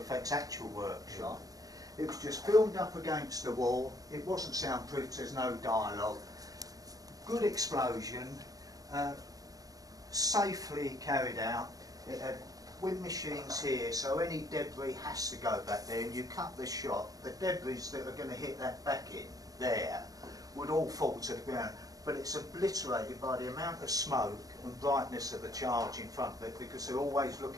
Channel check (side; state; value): left; late; 0.18 ms